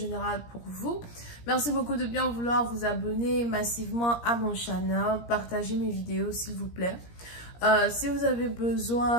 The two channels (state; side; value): late; right; 17 ms